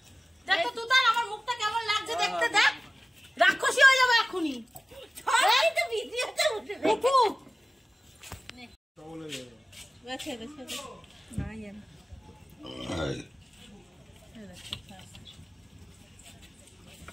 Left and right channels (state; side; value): normal; both; correlation 0.97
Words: দেখ তো তুই, তার আমার মুখটা কেমন লাগছে দেখতে। দেখ, রাক্ষসী হয়ে যাবে এখনই।